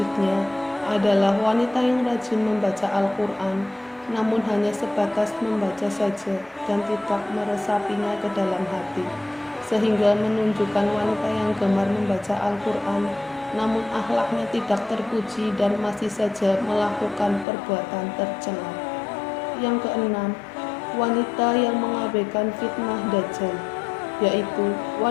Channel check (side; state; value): right; drops out; at 17.4 s